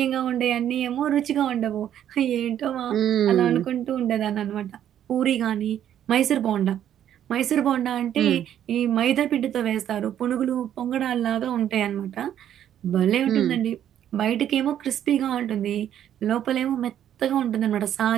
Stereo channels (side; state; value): left; quieter; 10.4 dB